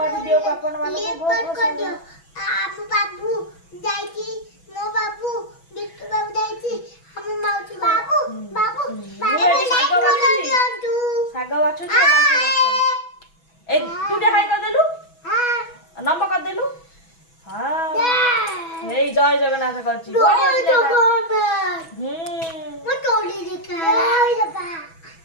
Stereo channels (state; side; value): late; right; 6.1 ms